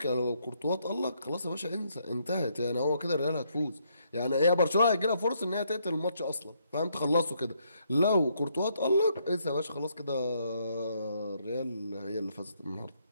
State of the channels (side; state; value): both; inverted; correlation -0.73